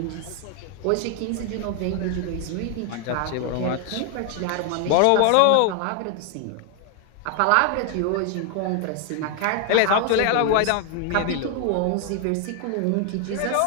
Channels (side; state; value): both; different; correlation 0.00